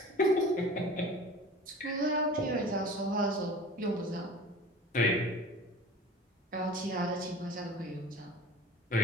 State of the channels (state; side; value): normal; both; correlation 0.40